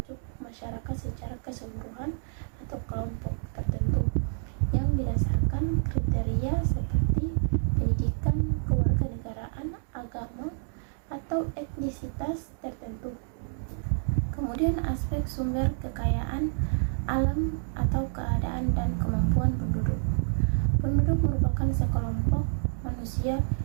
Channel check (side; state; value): left; silent; digital silence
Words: masyarakat secara keseluruhan atau kelompok tertentu yang berdasarkan kriteria seperti pendidikan, kewarganegaraan, agama, atau etnisitas tertentu. Kemudian aspek sumber kekayaan alam atau keadaan dan kemampuan penduduk. Penduduk merupakan sekelompok manusia